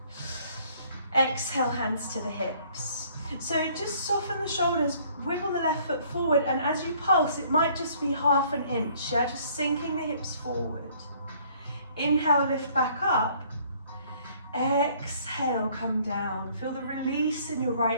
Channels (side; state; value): both; inverted; correlation -0.60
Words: Exhale, hands to the hips. So just soften the shoulders, wiggle the left foot forward, and as you pulse, it might just be half an inch, yeah? Just sinking the hips forward. Inhale, lift back up. Exhale, come down. Feel the release in your